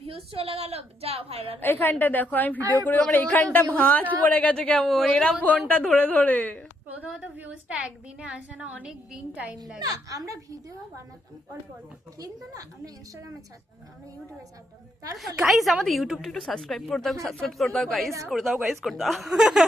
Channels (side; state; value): both; normal; correlation 0.75